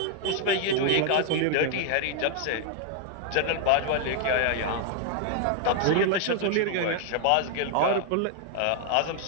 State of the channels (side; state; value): both; different; correlation 0.00